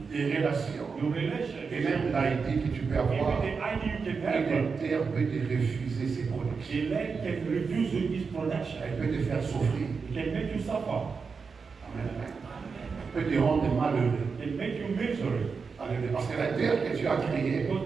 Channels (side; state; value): left; quieter; 5.2 dB